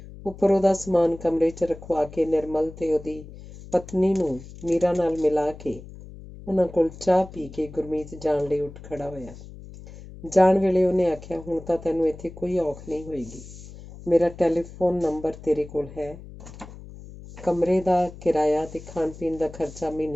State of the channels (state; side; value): noise; left; hum, 16 dB below the sound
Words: ਉੱਪਰ ਉਹਦਾ ਸਮਾਨ ਕਮਰੇ 'ਚ ਰਖਵਾ ਕੇ ਨਿਰਮਲ ਤੇ ਉਹਦੀ ਪਤਨੀ ਨੂੰ ਮੀਰਾ ਨਾਲ ਮਿਲਾ ਕੇ ਉਹਨਾਂ ਕੋਲ ਚਾਹ ਪੀ ਕੇ ਗੁਰਮੀਤ ਜਾਣ ਲਈ ਉੱਠ ਖੜਾ ਹੋਇਆ। ਜਾਣ ਵੇਲੇ ਉਹਨੇ ਆਖਿਆ, ਹੁਣ ਤਾਂ ਤੈਨੂੰ ਇੱਥੇ ਕੋਈ ਔਖ ਨਹੀਂ ਹੋਏਗੀ। ਮੇਰਾ ਟੈਲੀਫੋਨ ਨੰਬਰ ਤੇਰੇ ਕੋਲ ਹੈ। ਕਮਰੇ ਦਾ ਕਿਰਾਇਆ ਤੇ ਖਾਣ ਪੀਣ ਦਾ ਖਰਚਾ